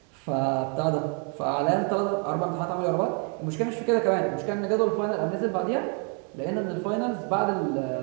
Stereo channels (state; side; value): quieter; left; 38.7 dB